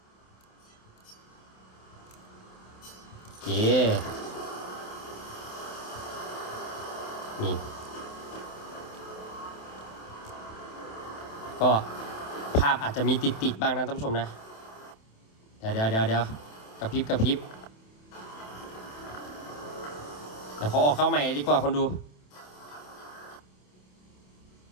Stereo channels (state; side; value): late; right; 27 ms